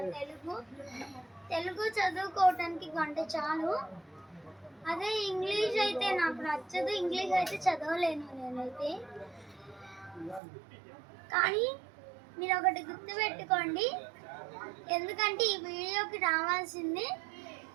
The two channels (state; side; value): drops out; left; at 10.4 s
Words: తెలుగు చదువుకోవటానికి గంట చాలు. అదే ఇంగ్లీష్ అయితే నాకు నచ్చదు, ఇంగ్లీష్ అయితే చదవలేను నేనైతే. కానీ మీరు ఒకటి గుర్తుపెట్టుకోండి, ఎందుకంటే ఈ వీడియోకి రావాల్సింది